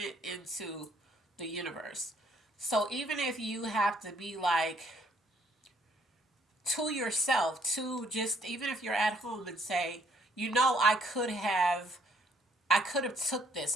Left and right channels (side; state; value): both; normal; correlation 0.65